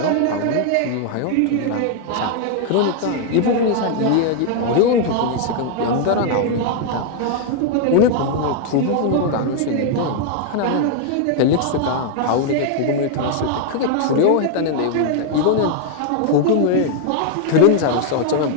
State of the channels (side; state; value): both; different; correlation 0.00